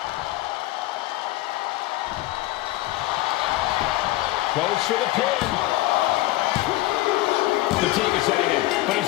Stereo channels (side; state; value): right; quieter; 17.6 dB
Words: Goes for the pin. Fatigue is setting in, but